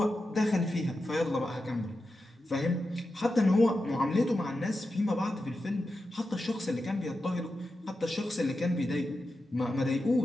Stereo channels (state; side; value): normal; both; correlation 0.90